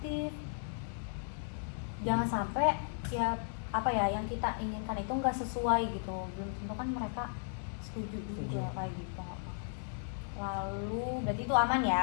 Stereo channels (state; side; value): silent; right; digital silence